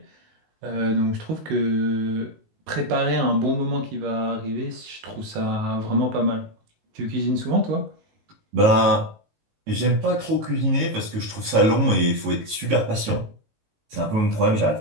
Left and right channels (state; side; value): late; left; 19 ms